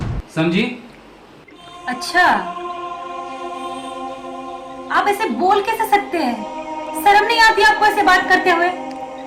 समझी? अच्छा, आप ऐसे बोल कैसे सकते हैं? शर्म नहीं आती आपको ऐसे बात करते हुए?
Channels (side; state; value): both; identical; correlation 1.00